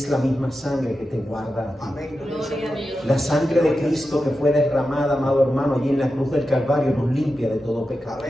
la misma sangre que te guarda a ti. Amén. Gloria a Dios. La sangre de Cristo que fue derramada, amado hermano, allí en la cruz del Calvario nos limpia de todo pecado.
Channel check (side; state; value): both; normal; correlation 0.91